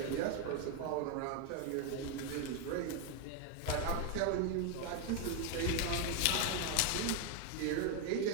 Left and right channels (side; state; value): both; different; correlation 0.01